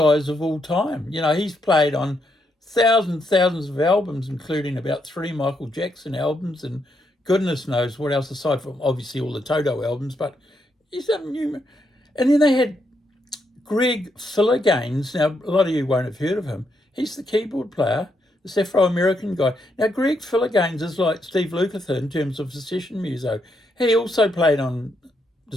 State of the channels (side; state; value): both; normal; correlation 0.79